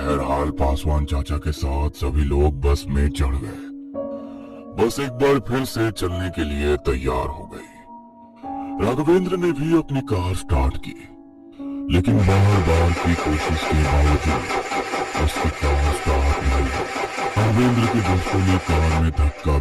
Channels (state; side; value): identical; both; correlation 1.00